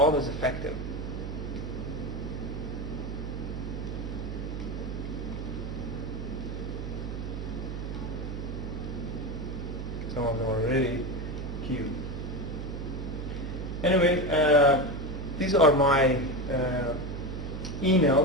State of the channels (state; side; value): noise; right; hum, 5 dB below the sound